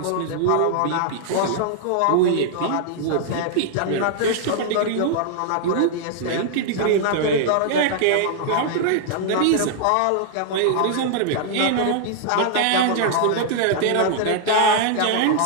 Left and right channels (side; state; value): both; different; correlation -0.01